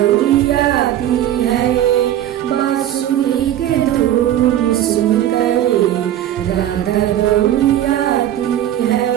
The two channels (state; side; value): quieter; left; 11.9 dB